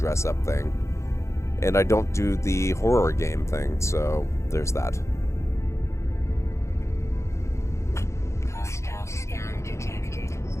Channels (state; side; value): late; right; 0.14 ms